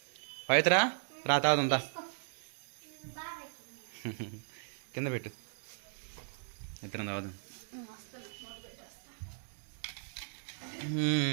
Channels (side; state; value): left; silent; digital silence